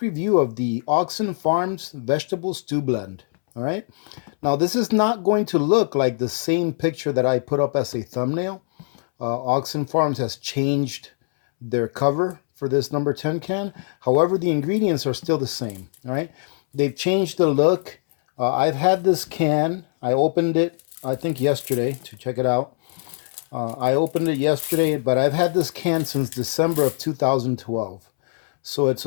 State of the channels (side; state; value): right; silent; 64 dB below the other